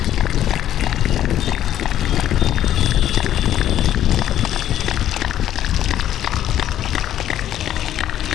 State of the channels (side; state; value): right; quieter; 11.6 dB